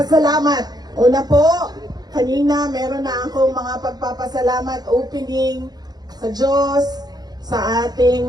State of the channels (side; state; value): left; late; 0.19 ms